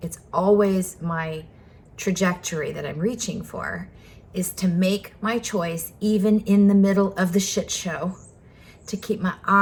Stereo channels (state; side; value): identical; both; correlation 1.00